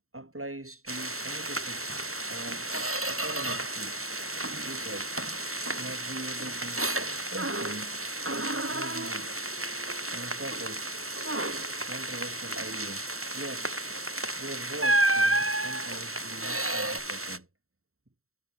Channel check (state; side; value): late; left; 0.63 ms